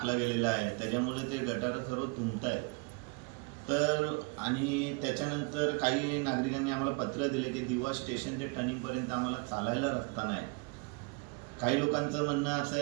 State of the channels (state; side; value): quieter; left; 30.7 dB